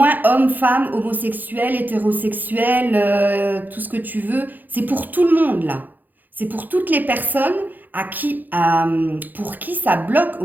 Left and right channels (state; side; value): late; left; 0.085 ms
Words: hommes, femmes, homosexuels, hétérosexuels, tout ce que tu veux. C'est pour tout le monde, là. C'est pour toutes les personnes pour qui ça bloque au